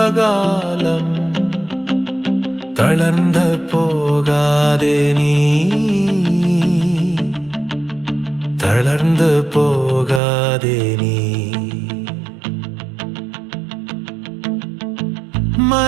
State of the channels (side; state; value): left; drops out; at 10.2 s